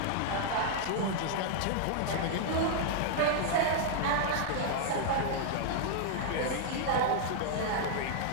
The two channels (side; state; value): both; different; correlation 0.00